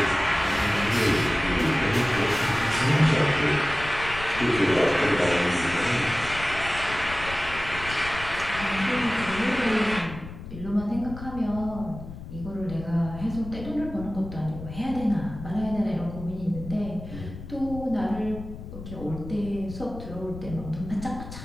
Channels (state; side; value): noise; left; rumble, 12 dB below the sound